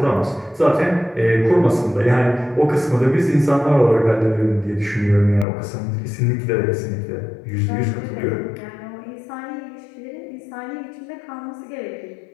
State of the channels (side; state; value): right; drops out; at 5.5 s